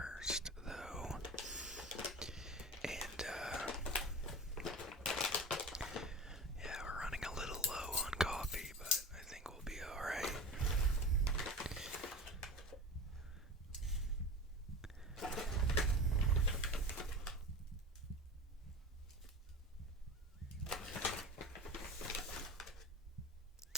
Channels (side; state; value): both; normal; correlation 0.32